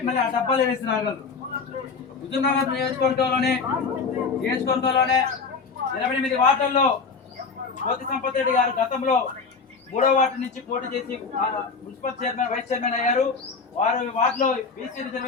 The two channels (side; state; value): right; quieter; 4.9 dB